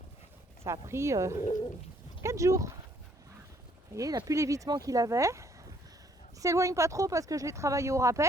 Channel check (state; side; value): normal; both; correlation 0.65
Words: Ça a pris 4 jours. Vous voyez, il n'a plus l'évitement qu'il avait. Il s'éloigne pas trop parce que je l'ai travaillé au